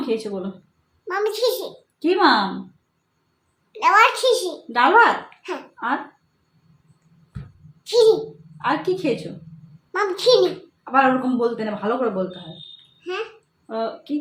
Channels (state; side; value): identical; both; correlation 1.00